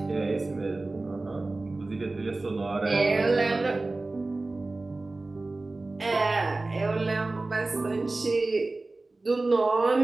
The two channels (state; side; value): quieter; left; 3.2 dB